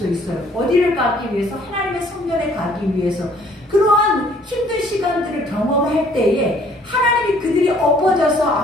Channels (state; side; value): normal; both; correlation 0.60